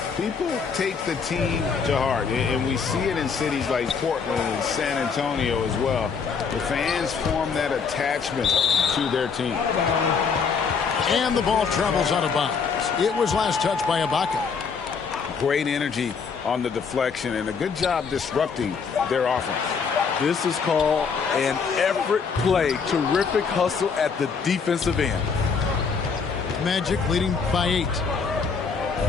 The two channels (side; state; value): right; quieter; 5.7 dB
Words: people take the team to heart. And we see it in cities like Portland and San Antonio as well. The fans form that attachment to their team. And the ball travels out of bounds. It was last touched by Ibaka. Great energy on the deflection and a good job disrupting their offense. This is called an effort play. Terrific hustle at the defensive end. Magic leading by 8.